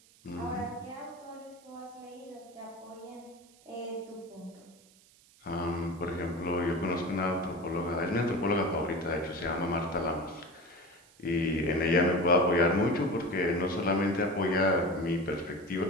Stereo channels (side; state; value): right; noise; hiss, 27 dB below the sound